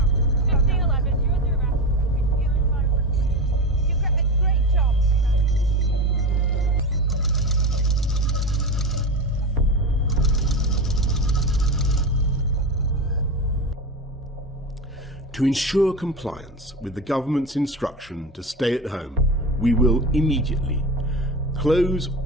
To ensure compliance with the government's instruction to stay at home, we will immediately close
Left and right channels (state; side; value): normal; both; correlation 0.23